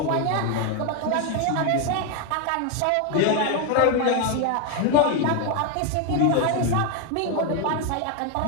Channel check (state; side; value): different; both; correlation 0.01